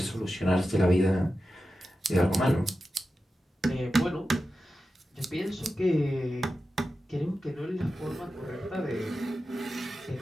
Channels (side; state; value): both; normal; correlation 0.92